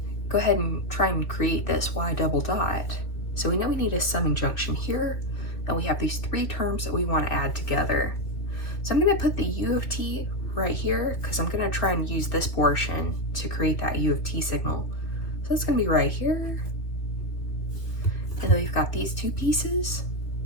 go ahead and try and create this y double dot. So we know we need a summing junction here, and we have these 3 terms that we want to add together. So I'm going to put the u of t right here because I'm going to try and use this portion to create that u of t signal. So it's going to be right here. And then we've got these two pieces.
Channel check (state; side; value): late; right; 2.6 ms